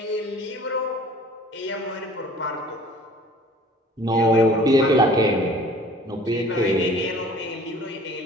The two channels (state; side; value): normal; both; correlation 0.49